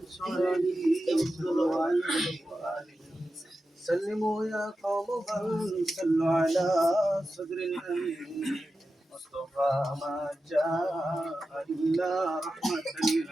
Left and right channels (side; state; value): both; normal; correlation 0.92